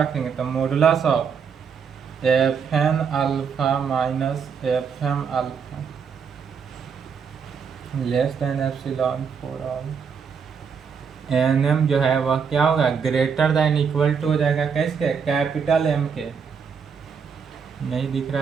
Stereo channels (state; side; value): quieter; left; 6.4 dB